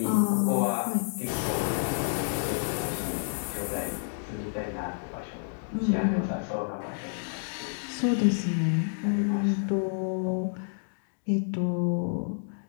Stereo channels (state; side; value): silent; right; digital silence